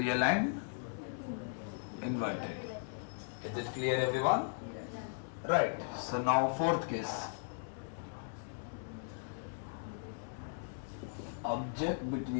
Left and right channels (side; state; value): right; silent; digital silence